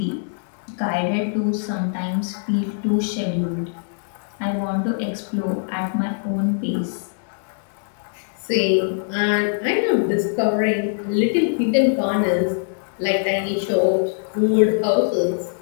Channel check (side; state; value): right; silent; digital silence